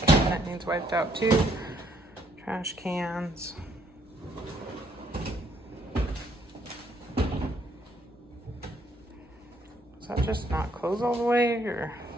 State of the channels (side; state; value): both; normal; correlation 0.68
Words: wiped out too. Trash cans. Does that just not close all the way, or?